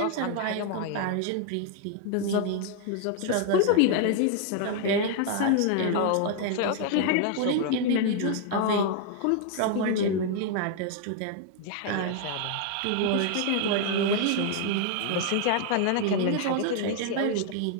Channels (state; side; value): different; both; correlation 0.00